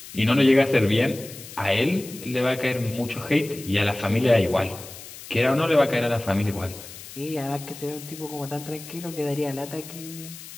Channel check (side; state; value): left; noise; hiss, 15 dB below the sound